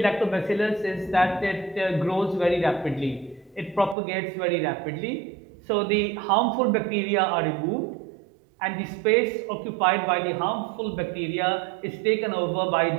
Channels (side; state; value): left; drops out; at 4.0 s